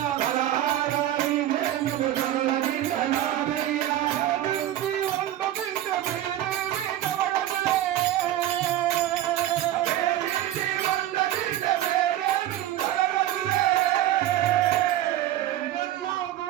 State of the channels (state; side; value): quieter; left; 13.0 dB